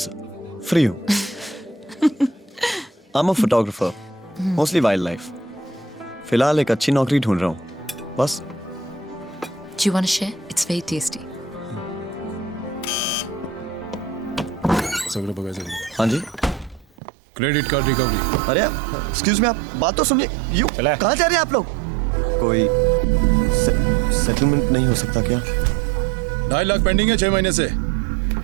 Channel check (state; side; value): drops out; left; at 16.9 s